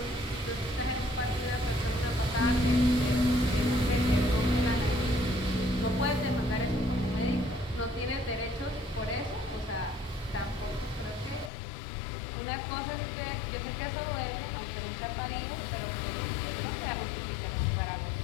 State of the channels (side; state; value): right; drops out; at 11.5 s